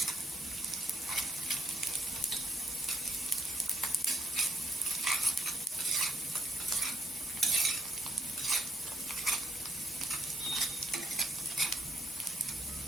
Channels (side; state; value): both; normal; correlation 0.74